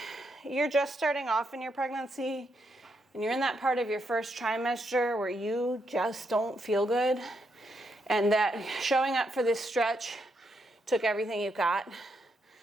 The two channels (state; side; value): normal; both; correlation 0.79